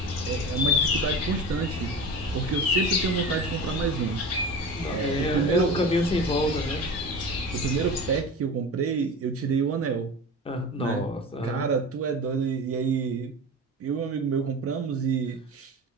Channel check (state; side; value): normal; both; correlation 0.31